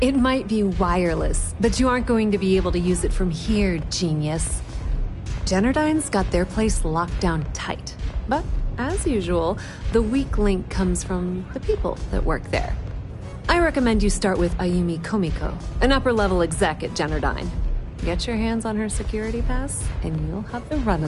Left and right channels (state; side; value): identical; both; correlation 1.00